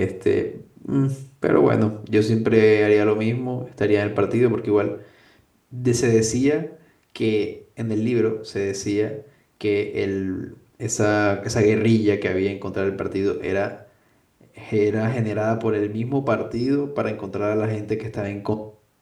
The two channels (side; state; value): both; identical; correlation 1.00